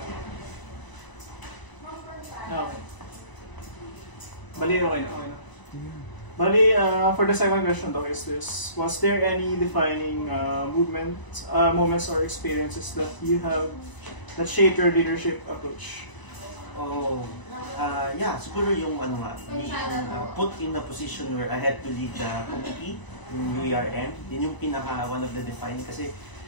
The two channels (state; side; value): late; right; 1.0 ms